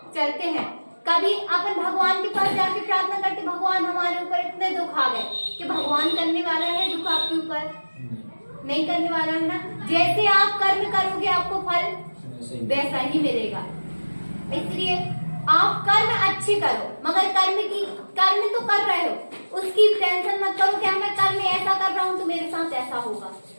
चलते हैं। कभी अपन भगवान के पास जाके प्रार्थना करते भगवान हमारे ऊपर इतने दुख आ गए, कि भगवान करने वाला है दुख आपके ऊपर? नहीं करने वाला है ना। जैसे आप कर्म करोगे आपको फल वैसा ही मिलेगा। इसलिए आप कर्म अच्छी करो, मगर कर्म तो कर रहे हो, उसकी टेंशन मत करो कि मैं कर्म ऐसा कर रहा हूँ तो मेरे साथ ऐसा होगा।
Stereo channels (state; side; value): inverted; both; correlation -1.00